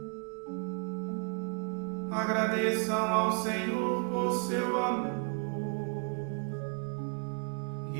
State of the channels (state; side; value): quieter; left; 38.1 dB